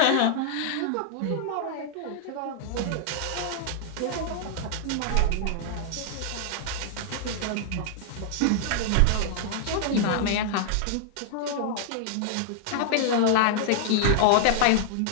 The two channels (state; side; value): different; both; correlation -0.01